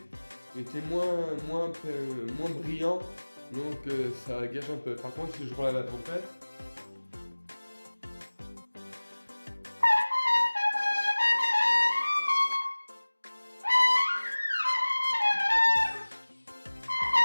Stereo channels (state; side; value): inverted; both; correlation -1.00